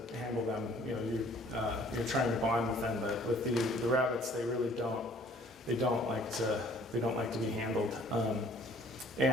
handle them. You know, you're trying to bond with them. But with the rabbits, they really don't. They don't like to be handled.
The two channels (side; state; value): both; normal; correlation 0.56